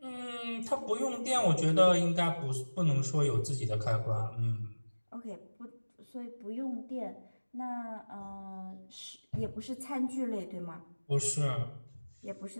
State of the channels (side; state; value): both; inverted; correlation -1.00